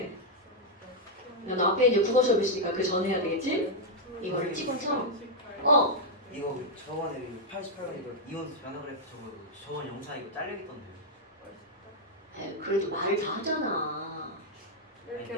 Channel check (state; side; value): normal; both; correlation -0.03